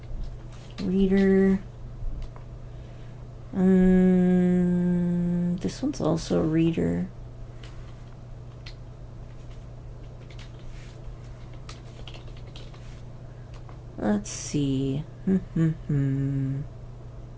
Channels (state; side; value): identical; both; correlation 1.00